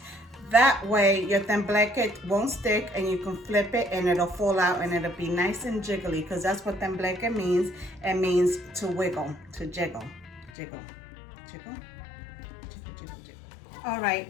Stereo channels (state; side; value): drops out; right; at 10.5 s